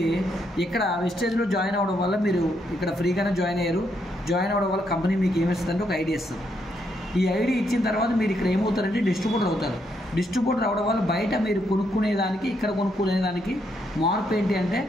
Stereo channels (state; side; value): normal; both; correlation 0.77